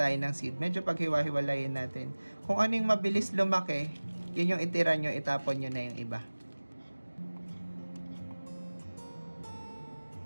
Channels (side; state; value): both; inverted; correlation -1.00